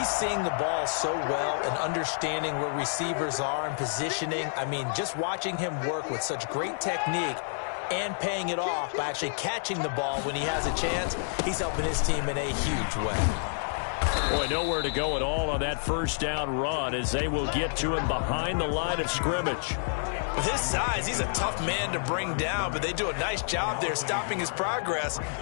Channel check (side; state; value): right; silent; digital silence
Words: seeing the ball so well and understanding where receivers are and positioning. I mean, just watching him work with such great technique and paying it off by actually catching the ball when he has a chance, he's helping his team in a huge way. Boy, nowhere to go at all on that first down run as they will get to him behind the line of scrimmage. With his size, he's a tough man to bring down, but they do a nice job there stopping his progress